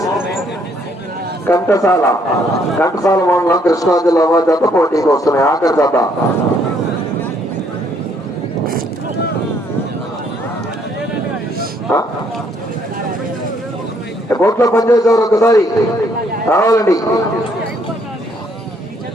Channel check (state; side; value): normal; both; correlation 0.68